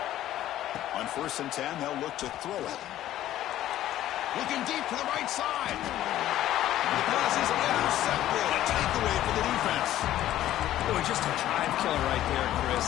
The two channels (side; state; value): right; quieter; 13.2 dB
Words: On 1st and 10, they'll look to throw it. Looking deep to the right side. The pass is intercepted. A takeaway for the defense. Boy, just a drive killer right there, Chris.